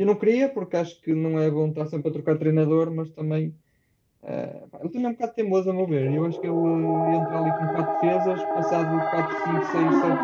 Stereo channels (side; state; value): both; identical; correlation 1.00